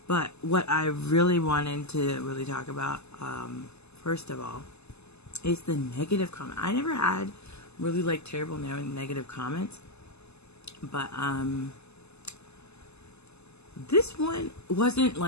But what I really wanted to really talk about first of all is the negative comment. I never had really terrible negative comments, but this one wasn't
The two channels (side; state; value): right; late; 0.80 ms